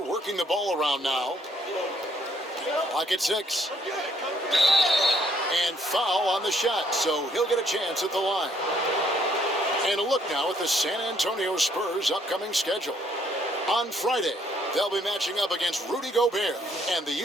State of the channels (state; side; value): normal; both; correlation 0.67